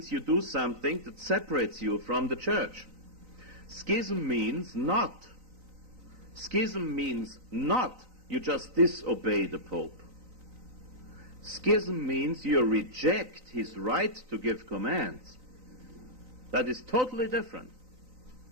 you do something that separates you from the Church. Schism means not. Schism means not you just disobey the Pope. Schism means you reject his right to give commands. That is totally different.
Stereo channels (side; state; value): left; late; 3.9 ms